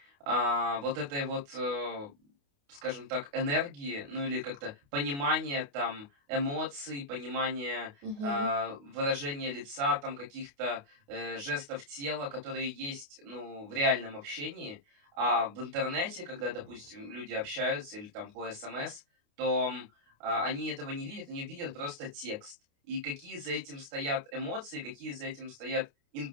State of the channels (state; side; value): late; left; 28 ms